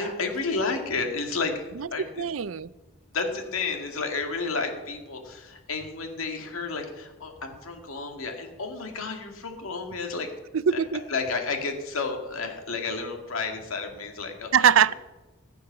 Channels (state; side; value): normal; both; correlation -0.05